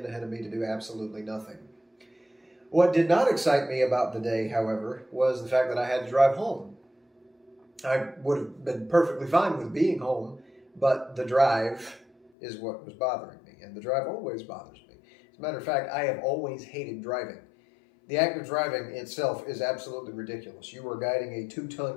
ahead of me to do absolutely nothing. What did not excite me about the day, however, was the fact that I had to drive home. I would have been perfectly fine with being home, but the drive is what was bothering me, and the drive always bothers me. As a matter of fact, I have always hated driving. The act of driving itself is absolutely ridiculous. You are guiding a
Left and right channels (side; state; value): right; drops out; at 12.3 s